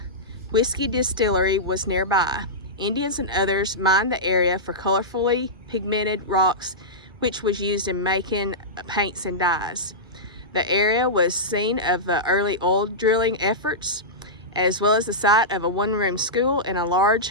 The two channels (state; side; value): normal; both; correlation -0.13